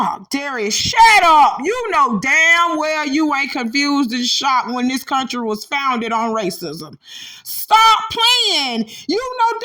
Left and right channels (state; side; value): identical; both; correlation 1.00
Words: Darius, shut up. You know damn well you ain't confused and shocked when this country was founded on racism. Stop playing. You know